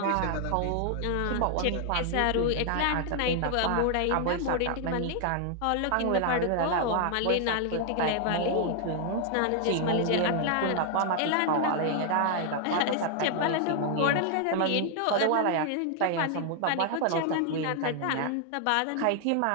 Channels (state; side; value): different; both; correlation 0.00